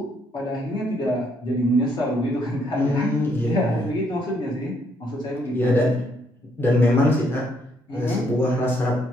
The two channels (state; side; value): normal; both; correlation 0.71